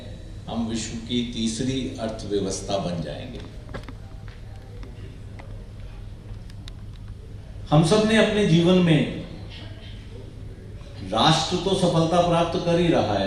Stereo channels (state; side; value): identical; both; correlation 1.00